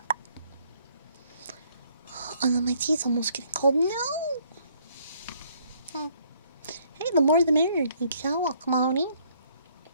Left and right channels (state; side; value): inverted; both; correlation -0.66